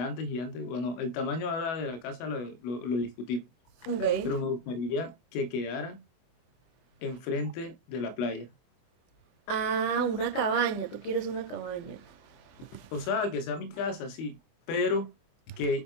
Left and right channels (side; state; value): right; late; 24 ms